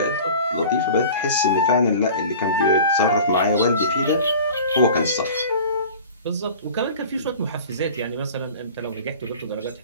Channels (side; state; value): both; inverted; correlation -0.40